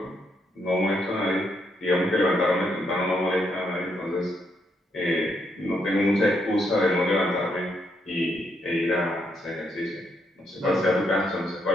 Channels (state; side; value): normal; both; correlation 0.77